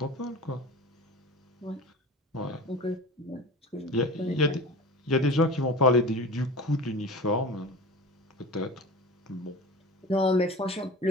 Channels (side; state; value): both; normal; correlation 0.35